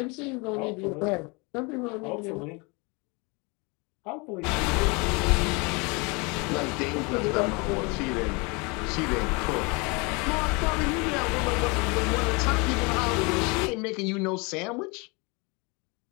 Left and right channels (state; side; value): quieter; right; 28.9 dB